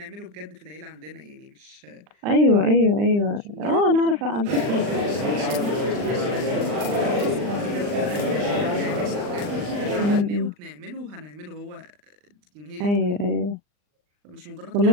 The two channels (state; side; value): late; left; 39 ms